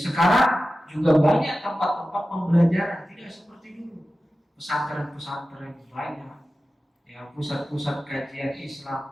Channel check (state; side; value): normal; both; correlation 0.94